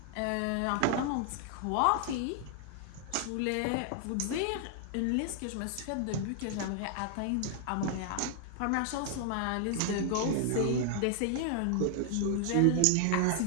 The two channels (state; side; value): different; both; correlation 0.00